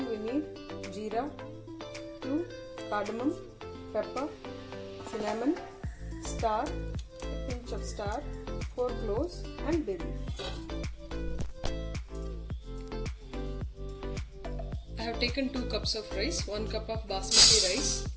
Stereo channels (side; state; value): both; identical; correlation 1.00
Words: we need jeera, 2 cardamom, pepper, cinnamon, star, a pinch of star, 4 cloves and bay leaf. I have taken 2 cups of rice, 1 cup of basmati rice